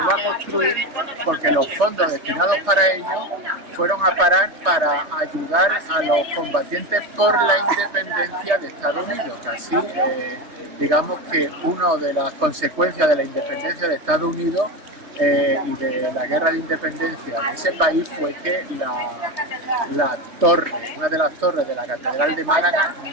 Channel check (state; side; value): late; left; 3.3 ms